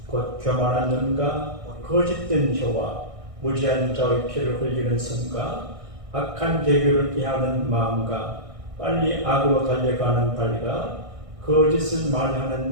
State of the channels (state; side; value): late; left; 1.6 ms